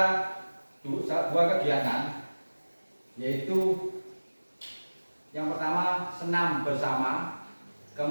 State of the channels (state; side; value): inverted; both; correlation -1.00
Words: dua kegiatan, yaitu yang pertama senam bersama,